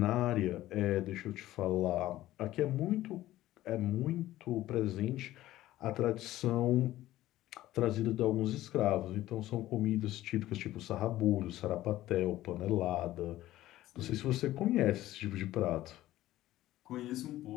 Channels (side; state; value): right; quieter; 15.1 dB